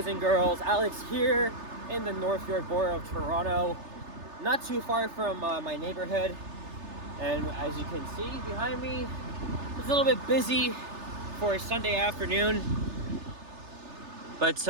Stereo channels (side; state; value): left; late; 3.3 ms